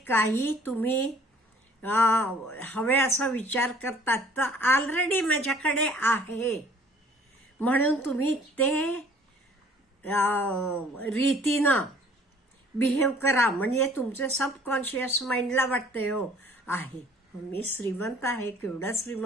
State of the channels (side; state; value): both; normal; correlation 0.55